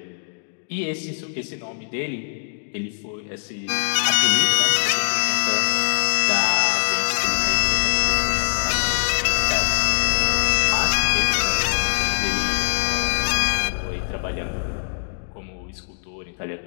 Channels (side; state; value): right; silent; digital silence